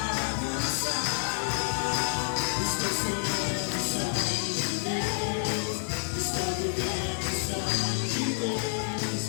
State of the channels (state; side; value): silent; right; digital silence